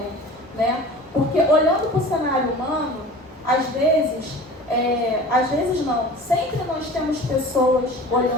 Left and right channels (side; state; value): both; normal; correlation 0.40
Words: né? Porque olhando para o cenário humano, às vezes não, sempre nós temos pessoas